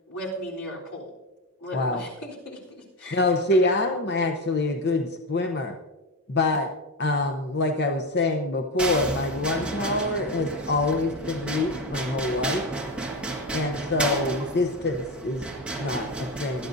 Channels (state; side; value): normal; both; correlation 0.17